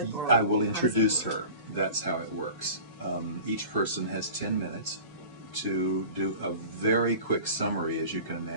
Or I will introduce her. That's how it works. Each person has 10 minutes to do a very quick summary, as you can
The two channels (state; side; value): inverted; both; correlation -0.40